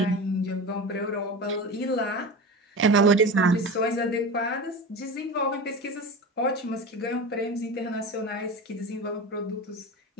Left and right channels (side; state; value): both; normal; correlation 0.29